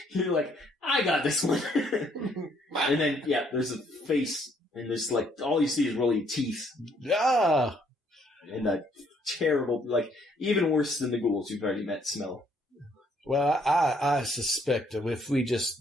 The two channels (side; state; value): both; normal; correlation 0.67